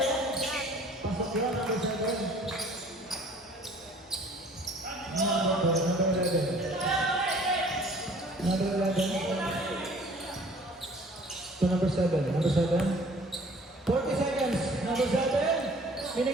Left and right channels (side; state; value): both; normal; correlation 0.52